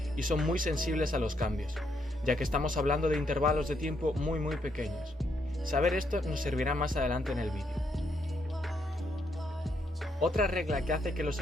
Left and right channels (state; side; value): normal; both; correlation 0.76